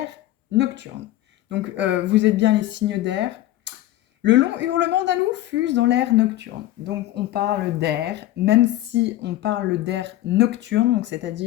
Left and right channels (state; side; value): quieter; right; 14.8 dB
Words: nocturne. Donc, vous êtes bien les signes d'air. Le long hurlement d'un loup fuse dans l'air nocturne. Donc, on parle d'air, même si on parle d'air nocturne, donc